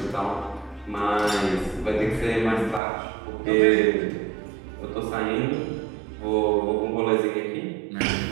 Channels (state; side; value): drops out; left; at 2.8 s